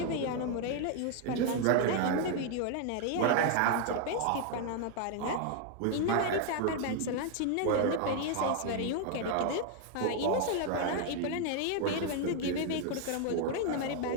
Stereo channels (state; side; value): different; both; correlation 0.00